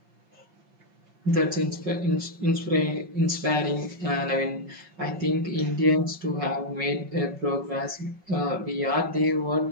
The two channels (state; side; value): late; left; 5.4 ms